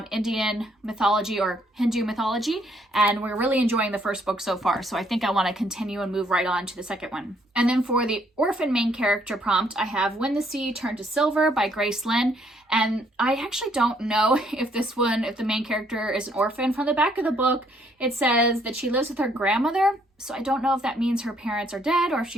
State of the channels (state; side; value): normal; both; correlation 0.68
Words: Indian mythology or Hindu mythology, and we're really enjoying the first book so far, so I think I want to continue and move right on to the second one. And then for the orphan main character prompt, I have When the Sea Turned to Silver by Grace Lynn, and I actually don't know if the main character is an orphan. From the back of the book, it says that she lives with her grandmother, so I don't know if that means her parents are dead or if